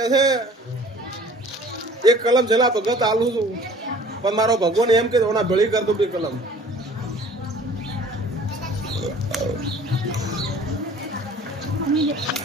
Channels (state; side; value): normal; both; correlation 0.49